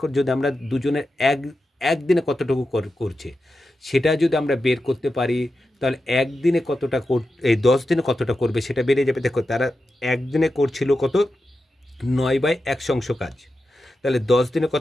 যদি আমরা দুজনের এক দিনে কতটুকু করছে সেটা যদি আমরা বের করতে পারি তাহলে 1 দিনে কতটা এই 10 দিনে কতটা করবে সেটা বেড়ে যাবে। দেখো তারা 1 দিনে করছিল কত? 9/1 অংশ কাজ। তাহলে 10 দিনে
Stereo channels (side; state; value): both; normal; correlation 0.90